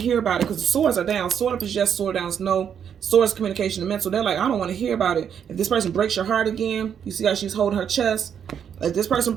hear about it because the swords are down. Sword up is yes, sword down is no. Swords, communication, and mental. They're like, I don't want to hear about it. If this person breaks your heart again, you see how she's holding her chest. If this person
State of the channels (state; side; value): quieter; left; 8.2 dB